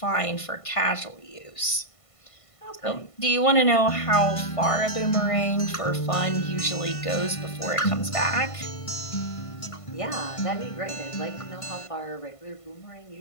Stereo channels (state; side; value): late; right; 1.5 ms